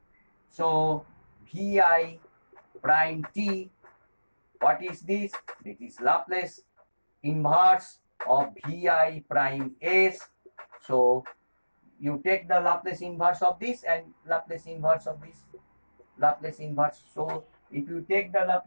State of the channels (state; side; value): inverted; both; correlation -1.00